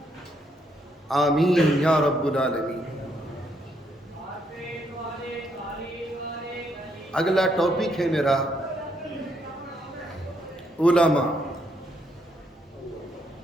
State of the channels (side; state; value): both; normal; correlation 0.74